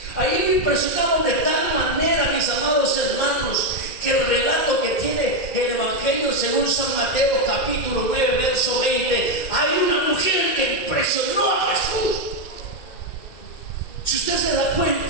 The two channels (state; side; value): late; right; 2.1 ms